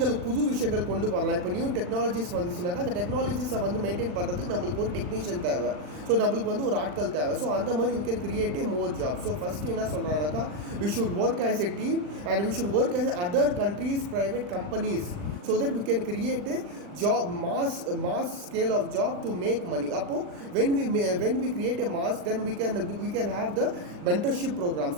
புது விஷயங்கள் கொண்டு வரலாம். இப்போ நியூ டெக்னாலஜிஸ் வந்துச்சுனாக்கா அந்த டெக்னாலஜிஸை வந்து மெயின்டைன் பண்ணுறதுக்கு நம்மளுக்கு ஒரு டெக்னீஷியன் தேவை. ஸோ நம்மளுக்கு வந்து ஒரு ஆட்கள் தேவை. ஸோ அந்த மாதிரி we can create a more job. So first என்ன சொல்கிறாங்கனாக்கா, we should work as a team and we should work as other countries private companies so that we can create a job mass scale of job to make money. Appo when we create a mass, then we can have the mentorship programs.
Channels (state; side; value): late; left; 39 ms